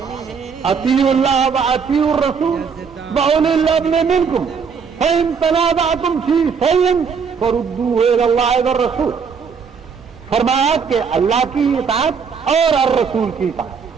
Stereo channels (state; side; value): quieter; left; 6.1 dB